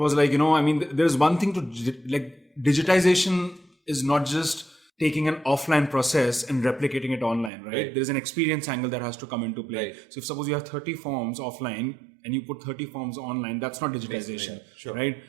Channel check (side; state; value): left; drops out; at 7.5 s